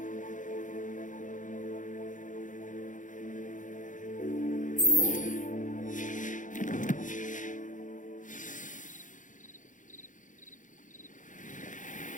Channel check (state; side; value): late; right; 0.37 ms